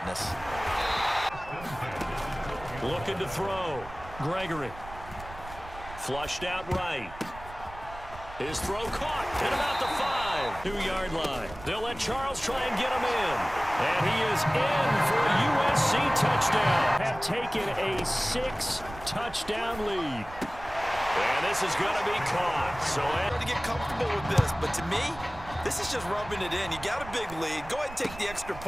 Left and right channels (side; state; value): right; noise; rumble, 15 dB below the sound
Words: Looking to throw. Gregory. Flushed out right. His throw caught at about the 5-2-yard line. They'll let Charles try and get him in. And he is in for a USC touchdown. Have taken a 6-touchdown lead. And this is going to be caught. So to get comfortable with this, but to me, this is just rubbing it in. You got a big lead. Go ahead and take the extra